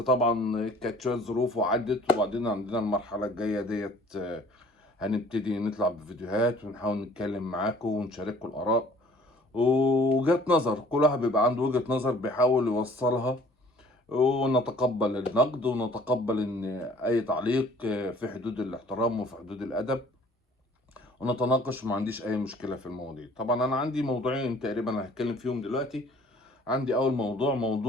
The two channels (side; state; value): both; normal; correlation 0.54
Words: كانت شوية ظروف وعدت، وبعدين عندنا المرحلة الجاية ديت هنبتدي نطلع بفيديوهات ونحاول نتكلم معاكم ونشارككم الآراء ووجهات نظر. كل واحد بيبقى عنده وجهة نظر بيحاول يوصلها، ونتقبل النقد ونتقبل إن أي تعليق في حدود الاحترام وفي حدود الأدب، ونتناقش وما عنديش اي مشكله في المواضيع. طبعا انا عندي موضوعين تقريبا هتكلم فيهم دلوقتي. عندي اول